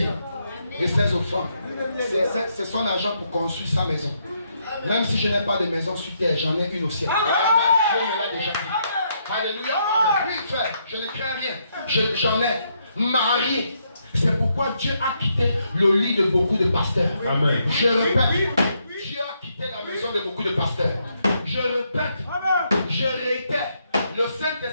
et ses offrandes. C'est son argent pour construire sa maison. Même si je n'ai pas de maison sur terre, j'en ai une au ciel. Dieu me l'a déjà dit. Alléluia. Oui, frère, je ne crains rien. J'en ai marié. C'est pourquoi Dieu a quitté le lit de beaucoup de pasteurs. Amen. Je répète, Dieu a quitté la maison de beaucoup de pasteurs. Je répète, je réitère, le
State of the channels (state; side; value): inverted; both; correlation -0.76